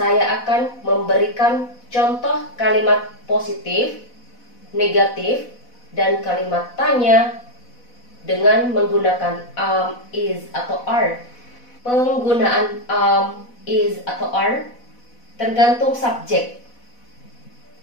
akan memberikan contoh kalimat positif, negatif, dan kalimat tanya dengan menggunakan am, is, atau are. Penggunaan am, is, atau are tergantung subjek.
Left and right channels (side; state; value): right; late; 4.1 ms